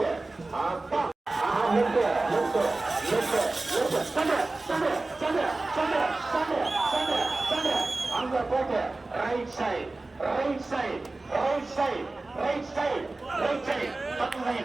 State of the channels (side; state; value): left; quieter; 3.2 dB